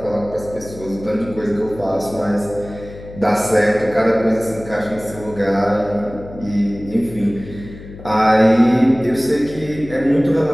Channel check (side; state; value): left; noise; hum, 16 dB below the sound